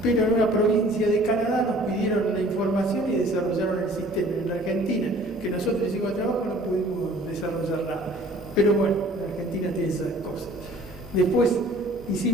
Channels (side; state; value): both; normal; correlation 0.51